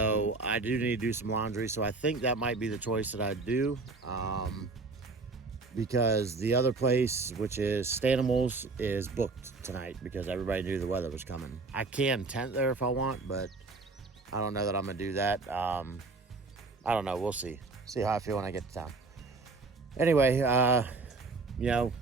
I do need to do some laundry. So I think that might be the choice that I do. Because the other place, which is Stanimals, is booked tonight because everybody knew the weather was coming. I can tent there if I want, but I don't know that I'm gonna do that. I don't know, we'll see. See how I feel when I get to town. Anyway, got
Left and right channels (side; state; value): left; quieter; 3.8 dB